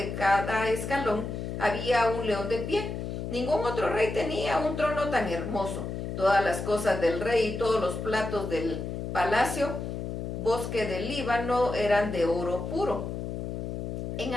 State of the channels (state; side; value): noise; left; hum, 5 dB below the sound